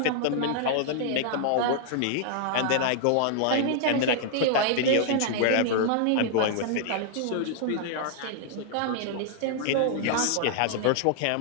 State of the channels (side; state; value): both; different; correlation -0.01